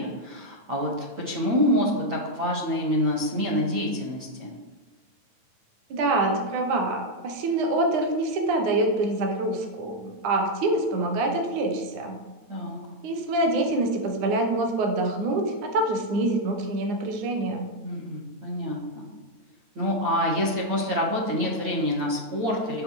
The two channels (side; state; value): left; late; 8.9 ms